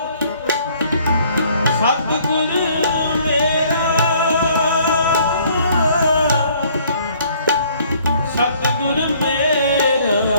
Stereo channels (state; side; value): inverted; both; correlation -0.60